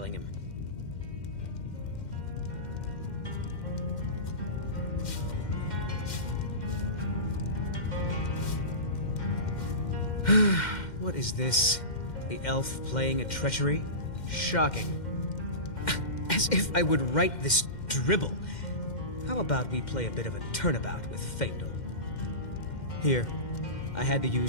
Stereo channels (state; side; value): late; right; 2.1 ms